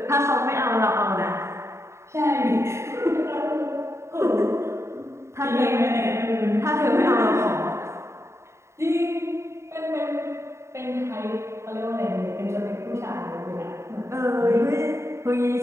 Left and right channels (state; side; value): late; left; 0.13 ms